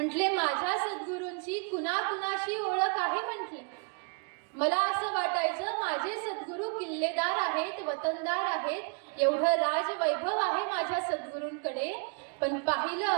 माझ्या सद्गुरूंची कुणाकुणाशी ओळख आहे. म्हटले मला असं वाटायचं माझे सद्गुरू किल्लेदार आहेत, वतनदार आहेत, एवढं राजवैभव आहे माझ्या सद्गुरूंकडे. पण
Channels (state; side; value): quieter; left; 36.9 dB